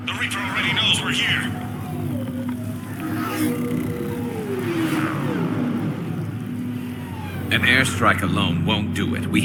The Reaper already knows we're here. An airstrike alone won't do it. We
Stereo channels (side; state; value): both; identical; correlation 1.00